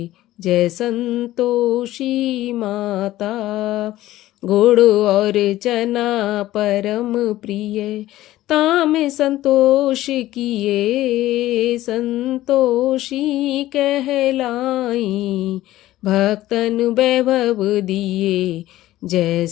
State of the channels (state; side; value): quieter; right; 15.3 dB